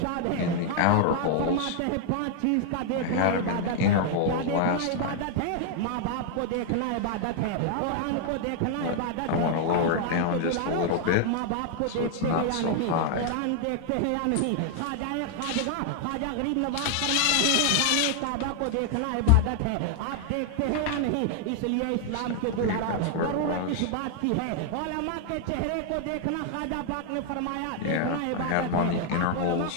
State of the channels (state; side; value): different; both; correlation 0.00